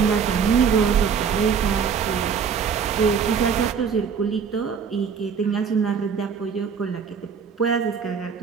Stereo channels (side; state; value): left; quieter; 6.6 dB